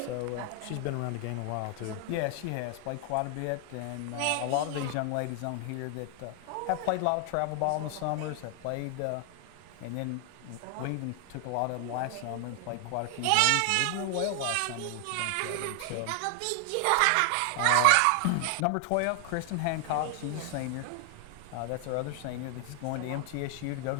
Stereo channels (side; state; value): both; different; correlation 0.00